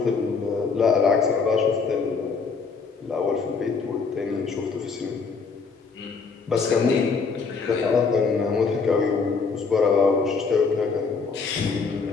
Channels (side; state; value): right; quieter; 4.9 dB